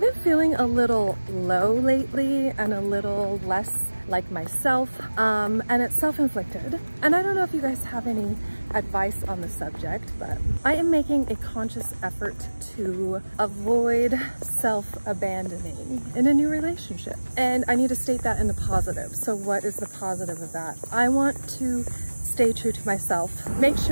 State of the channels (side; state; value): both; inverted; correlation -1.00